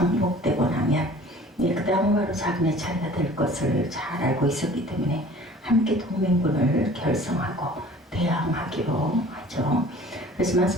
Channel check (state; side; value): normal; both; correlation 0.48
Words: 나면 그 다음은 바로 자기네 차례가 될 것을 잘 알고 있었기 때문에 함께 동맹군을 결성하고 대항하기로 하죠. 그렇지만